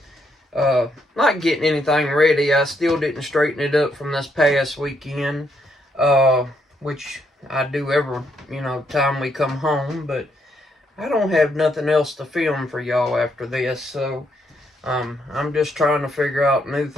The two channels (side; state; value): both; normal; correlation 0.75